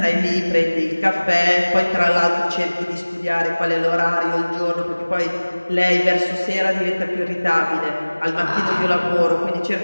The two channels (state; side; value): inverted; both; correlation -1.00